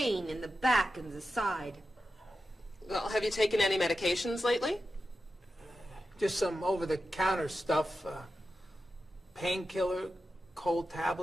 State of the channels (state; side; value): normal; both; correlation 0.91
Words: in the back and the side? Well, have you taken any medications lately? Just some over-the-counter stuff. Painkiller, cold